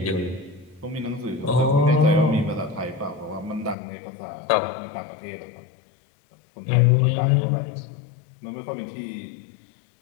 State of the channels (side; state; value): right; drops out; at 3.8 s